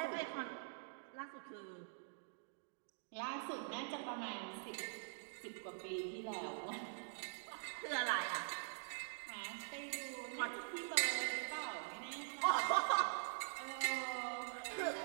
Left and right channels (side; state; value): left; silent; digital silence